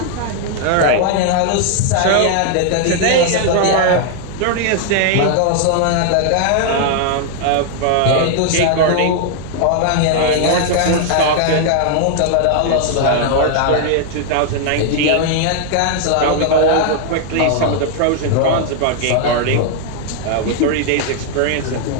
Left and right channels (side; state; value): both; different; correlation 0.00